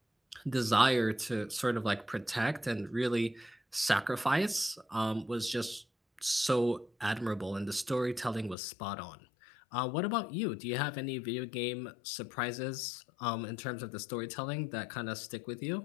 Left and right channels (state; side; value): drops out; right; at 8.6 s